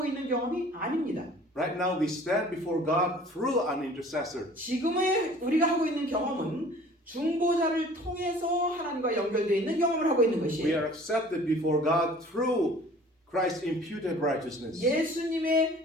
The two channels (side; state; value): both; normal; correlation 0.49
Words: 있는 경험이 아닙니다. Right now we stand before God through an intercessor. 지금의 우리가 하고 있는 경험은 중보자를 통해서 하나님과 연결되어 있는 경험을 하고 있는 We 것이에요. are accepted before God through Christ's imputed righteousness.